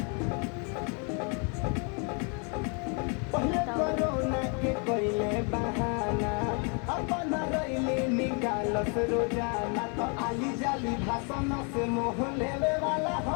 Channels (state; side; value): quieter; right; 36.4 dB